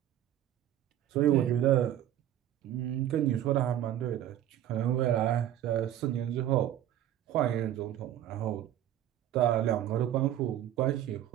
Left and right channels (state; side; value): quieter; left; 11.9 dB